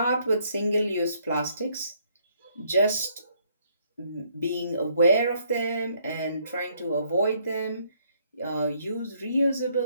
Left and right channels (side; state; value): both; inverted; correlation -0.69